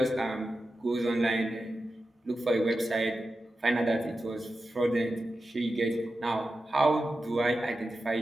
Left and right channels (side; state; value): both; normal; correlation 0.91